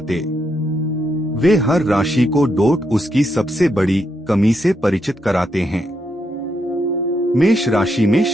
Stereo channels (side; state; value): both; normal; correlation 0.80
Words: वे हर राशि को डोट उसकी सबसे बड़ी कमी से परिचित कराते हैं। मेष राशि में